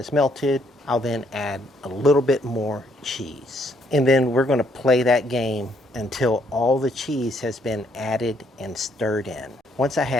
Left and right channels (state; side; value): normal; both; correlation 0.69